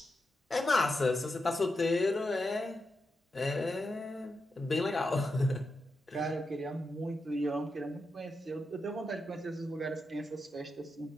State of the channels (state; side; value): normal; both; correlation 0.87